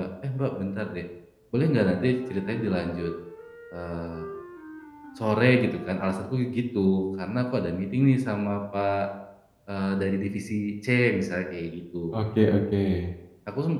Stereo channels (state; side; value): identical; both; correlation 1.00